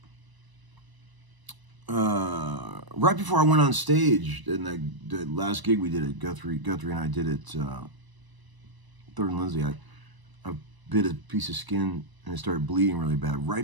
Right before I went on stage, and the last gig we did at Guthrie and I did it, Third and Lindsay, I bit a piece of skin and it started bleeding really bad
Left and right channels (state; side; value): late; left; 1.0 ms